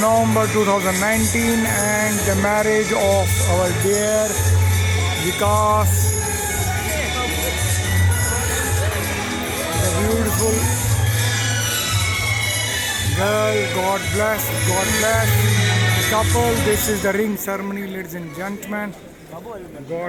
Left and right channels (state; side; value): identical; both; correlation 1.00